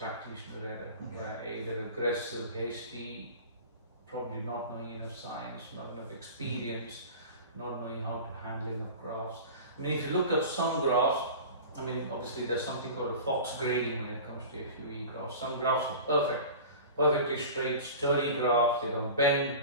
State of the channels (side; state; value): both; inverted; correlation -0.36